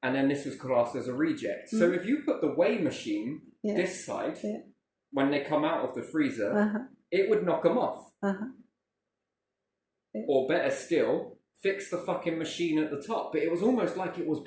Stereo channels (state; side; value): identical; both; correlation 1.00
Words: And then this was classed as a reject. So if you put the weigh machine Yeah. this side, Yeah. when they come out of the freezer, Uh-huh. it would knock them off. Uh-huh. Or better still, fix the fucking machine at the top. But it was almost like it was